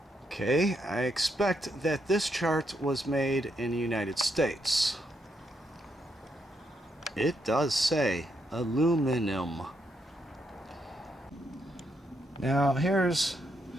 Okay, I expect that this chart was made in the United States. It does say aluminum. Now here's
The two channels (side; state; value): both; normal; correlation 0.78